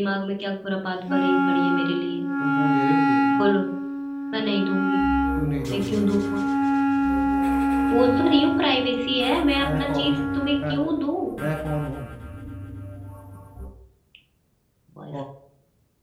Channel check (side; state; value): both; identical; correlation 1.00